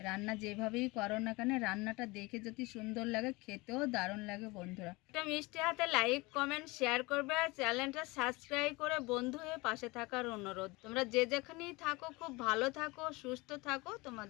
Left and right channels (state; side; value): quieter; right; 23.9 dB